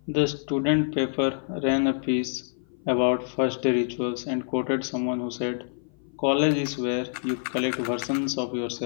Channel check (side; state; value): right; silent; 56 dB below the other